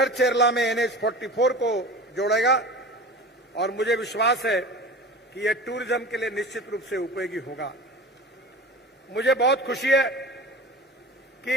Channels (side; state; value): both; normal; correlation 0.34